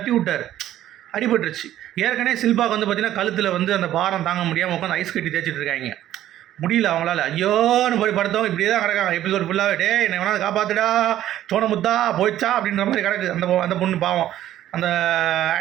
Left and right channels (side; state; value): left; quieter; 12.7 dB